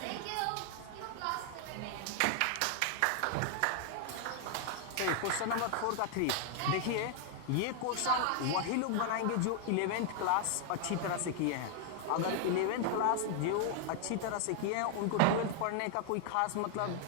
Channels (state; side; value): different; both; correlation 0.00